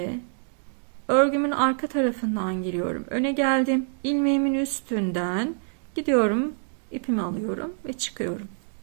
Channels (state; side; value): silent; left; digital silence